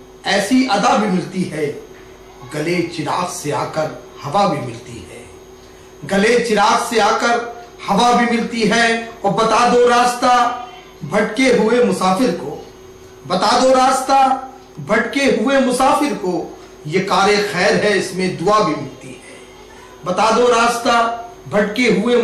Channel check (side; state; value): both; identical; correlation 1.00